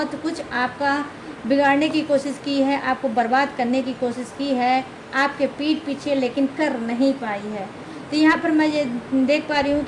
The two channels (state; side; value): identical; both; correlation 1.00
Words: कुछ आपका बिगाड़ने की कोशिश की है, आपको बर्बाद करने की कोशिश की है आपके पीठ पीछे, लेकिन कर नहीं पाई है। तो यहाँ पर मैं ये देख पा रही हूँ